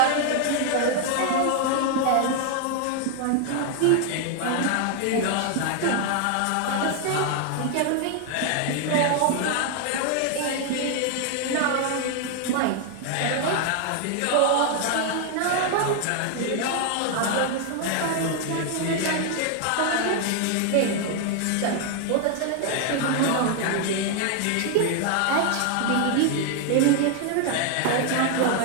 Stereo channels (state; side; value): different; both; correlation 0.00